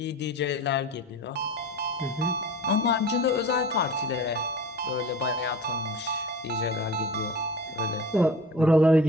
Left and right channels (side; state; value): both; normal; correlation 0.38